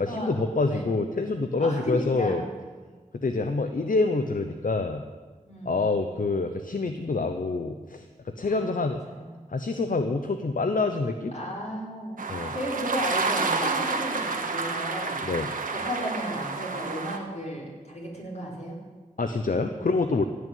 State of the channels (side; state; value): both; normal; correlation 0.43